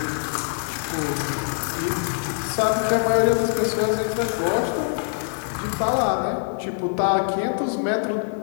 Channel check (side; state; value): right; silent; 57 dB below the other